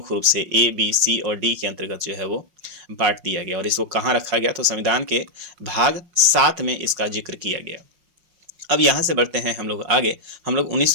रूप से ए, बी, सी और डी के अंतर्गत जो है वो बांट दिया गया। और इसको कहाँ रखा गया, तो संविधान के भाग 7 में इसका जिक्र किया गया। अब यहाँ से बढ़ते हैं हम लोग आगे। हम लोग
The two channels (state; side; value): late; left; 5.6 ms